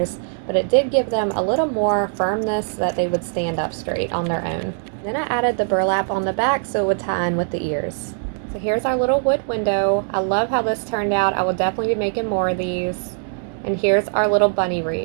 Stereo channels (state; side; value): silent; left; 65 dB below the other